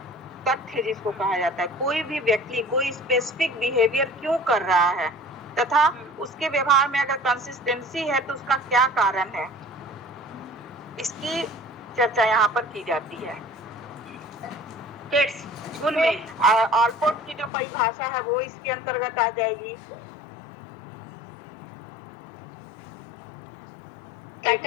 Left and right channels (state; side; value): drops out; right; at 17.5 s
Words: तथ्य जिसको कहा जाता है। कोई भी व्यक्ति कोई स्पेसिफिक बिहेवियर क्यों कर रहा है तथा उसके व्यवहार में अगर कंसिस्टेंसी है तो उसका क्या कारण है, इसकी चर्चा यहाँ पर की जाती है। ट्रेड्स गुण में ऑलपोर्ट की जो परिभाषा है वो इसके अंतर्गत आ जाएगी।